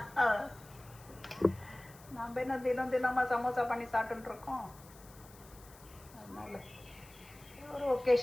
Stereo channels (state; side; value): noise; left; hiss, 22 dB below the sound